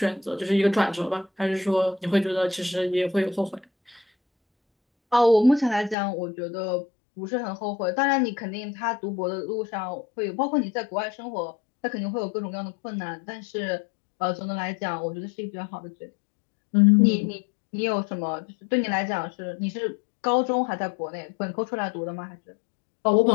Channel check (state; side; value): drops out; right; at 6.0 s